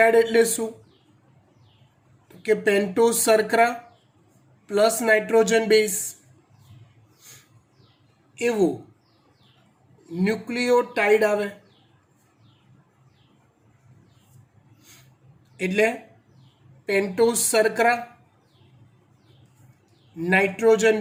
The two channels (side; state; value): both; identical; correlation 1.00